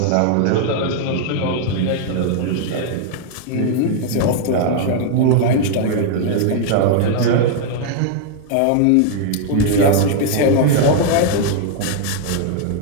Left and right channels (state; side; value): different; both; correlation 0.00